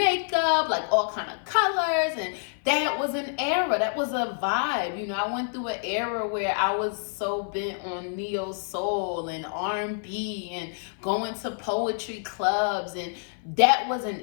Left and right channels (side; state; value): right; silent; 56 dB below the other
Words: like all kind of colors, and that was an era. That was a vibe. I went through an era where I was so bent on neo soul and R&B and going to poetry clubs, and that was